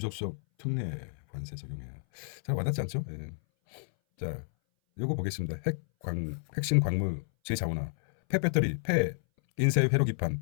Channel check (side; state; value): right; silent; 57 dB below the other